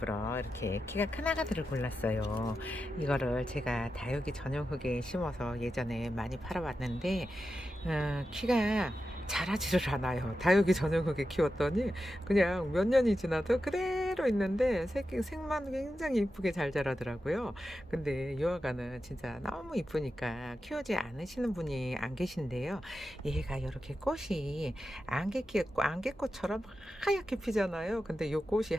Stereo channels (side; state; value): both; normal; correlation 0.90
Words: 이렇게 키가 큰 아가들을 골랐어요. 이거를 제가 다육이 전용 흙에 심어서 예전에 많이 팔아봤는데 키가 자라지를 않아요. 다육이 전용 흙에 키웠더니 그냥 몇 년이 지나도 그대로 있는데 색만 굉장히 이쁘게 잘 자라더라고요. 근데 이 아가는 진짜 너무 이쁘니까 키우지 않으시는 분이 안 계신데요. 얘가 이렇게 꽃이 안개꽃처럼 하얗게 피잖아요. 근데 이 꽃이